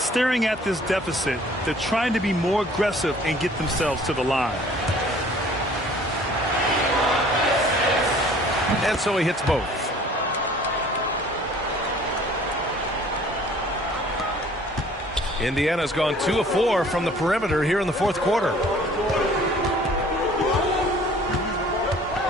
at this deficit, they're trying to be more aggressive and get themselves to the line. And so he hits both. Indiana's gone 2 of 4 from the perimeter here in the fourth quarter.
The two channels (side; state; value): both; normal; correlation 0.52